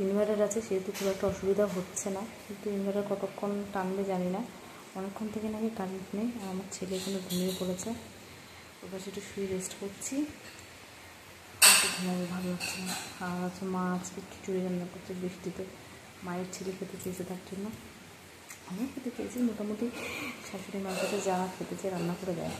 ইনভার্টার আছে সেহেতু খুব একটা অসুবিধা হচ্ছে না, কিন্তু ইনভার্টার কতক্ষণ টানবে জানি না। অনেকক্ষণ থেকে নাকি কারেন্ট নেই, আর আমার ছেলে এখানে ঘুমিয়ে পড়েছে। ওর কাছে একটু শুয়ে রেস্ট করছি, একটু ঘুমাবো, ভালো লাগছে না। আর হচ্ছে মা আজকে খিচুড়ি রান্না করছে বৃষ্টিতে, মায়ের ছেলে খেতে চেয়েছে, তার জন্য আমিও খেতে চেয়েছি। মোটামুটি শাশুড়ি মার কাছে যা খেতে চেয়ে রান্না করে দেয়,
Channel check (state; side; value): identical; both; correlation 1.00